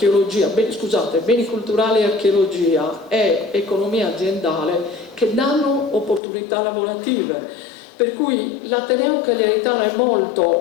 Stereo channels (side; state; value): right; drops out; at 6.2 s